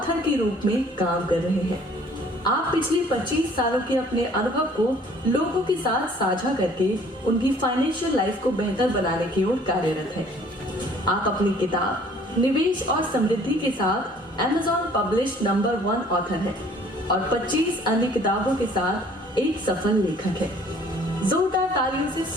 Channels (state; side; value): normal; both; correlation 0.56